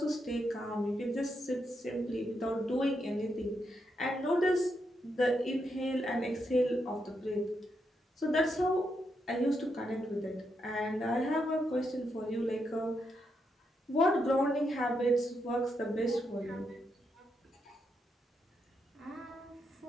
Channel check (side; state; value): both; normal; correlation 0.82